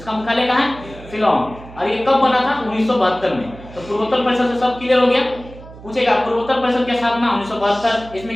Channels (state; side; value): noise; right; hum, 18 dB below the sound